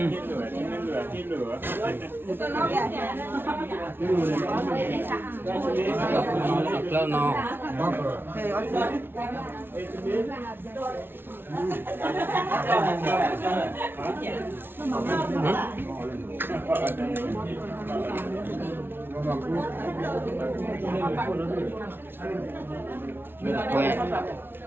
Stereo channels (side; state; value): left; late; 0.11 ms